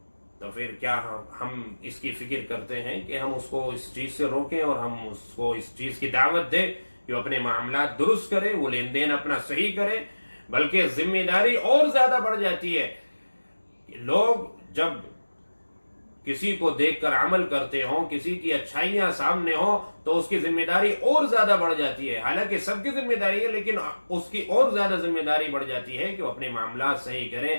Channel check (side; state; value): both; inverted; correlation -1.00